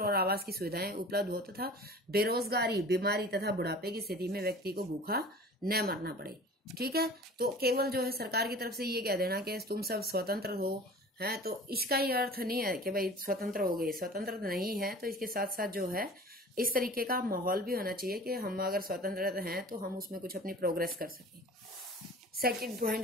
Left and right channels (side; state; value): both; normal; correlation 0.42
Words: और आवास की सुविधाएं उपलब्ध हो तथा बेरोजगारी, बीमारी तथा बुढ़ापे की स्थिति में व्यक्ति को भूखा न मरना पड़े। ठीक है, तो केवल जो है सरकार की तरफ से ये कह देना कि तुम सब स्वतंत्र हो है, तो इसका ही अर्थ नहीं है कि भाई स्वतंत्र हो गए। स्वतंत्र नहीं है तो इसके साथ साथ जो है इस तरीके का माहौल भी होना चाहिए कि हम अगर स्वतंत्र हैं तो हम उसमें कुछ अपनी प्रोग्रेस कर सकें। सेकंड पॉइंट